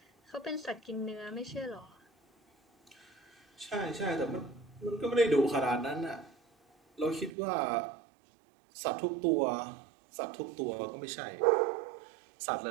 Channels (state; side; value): drops out; left; at 7.4 s